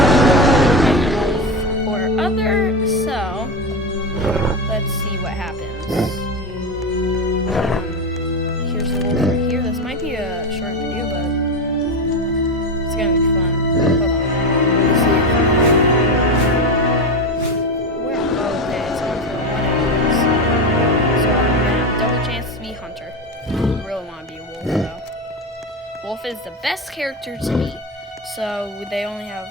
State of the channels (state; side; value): normal; both; correlation 0.18